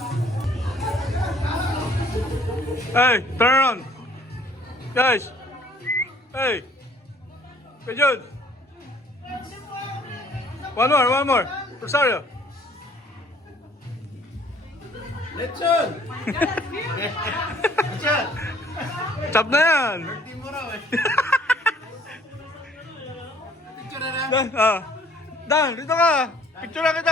Hey, turn around. Guys. Hey. Good Jude. One more. Rosario. Lechon! Lechon! Chop na yan. Birthday mo raw eh. Picture na na. Dan, dito ka. Picture na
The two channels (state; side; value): normal; both; correlation 0.58